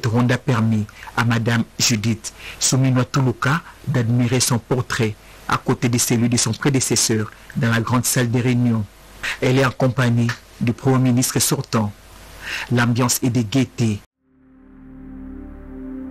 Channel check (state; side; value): identical; both; correlation 1.00